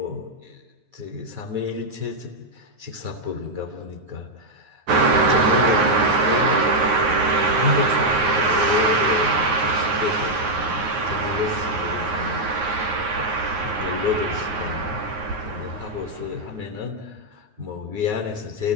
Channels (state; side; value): late; left; 9.5 ms